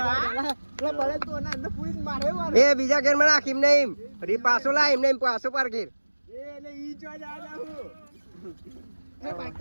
તો બળે તો ના અંદર પૂરી મારે એ બીજા ગેર માં નાખ. એમ નહીં ફરી પાછો લા. એમ નહીં પાછો પાર ગેર. એટલે ઈ જો જા હું એ બાઈક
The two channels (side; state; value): both; inverted; correlation -1.00